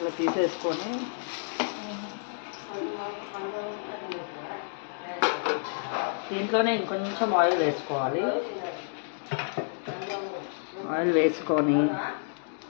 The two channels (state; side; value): silent; right; digital silence